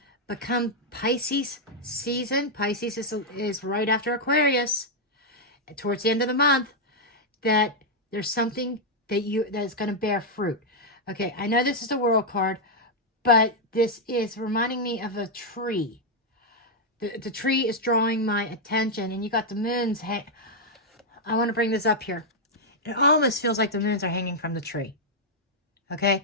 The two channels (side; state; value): both; normal; correlation -0.03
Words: but come Pisces season, Pisces is right after Aquarius, towards the end of the month, that there's something that is going to bear fruit. Okay, I know this is the World card, but this is reminding me of a tree. The tree is drawing my attention, and you got the moons. I want to bring this up here. It almost feels like the moons are hanging from the tree. Okay,